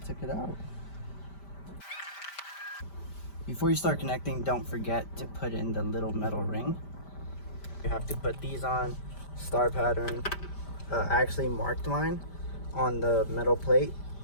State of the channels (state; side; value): late; right; 5.1 ms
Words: took it out. Before you start connecting, don't forget to put in the little metal ring. You have to put these on, star pattern. I actually marked mine on the metal plate